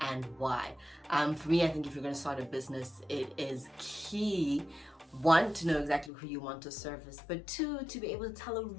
why. For me, I think if you're going to start a business, it is key, 1, to know exactly who you want to service, but 2, to be able to tell a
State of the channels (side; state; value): right; drops out; at 6.1 s